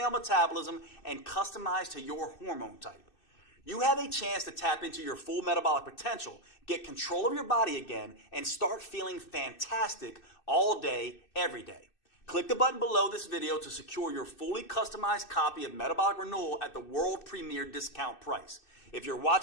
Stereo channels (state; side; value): late; right; 2.6 ms